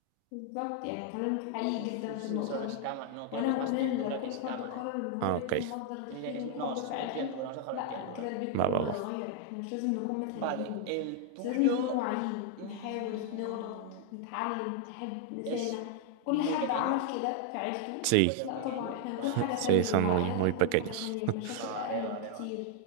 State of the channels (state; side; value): different; both; correlation 0.00